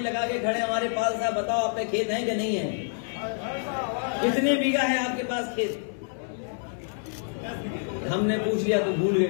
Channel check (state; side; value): silent; right; 60 dB below the other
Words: लगा के खड़े हमारे पास साहब, बताओ आप पे खेत है कि नहीं है? कितने बीघा है आपके पास खेत? हमने पूछ लिया तो भूल गए